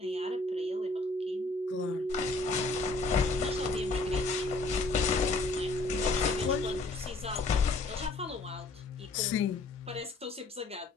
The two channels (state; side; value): quieter; right; 3.3 dB